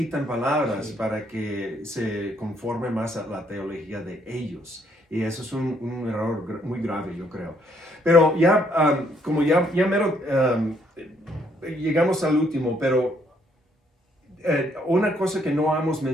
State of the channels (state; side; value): normal; both; correlation 0.69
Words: palabras para que se conforme más a la teología de ellos. Y eso es un error muy grave, yo creo. Pero ya, como ya mero, llegamos al último, pero una cosa que no hemos